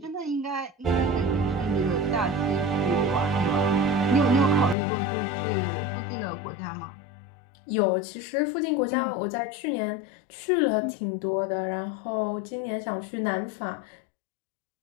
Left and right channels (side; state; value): right; drops out; at 4.8 s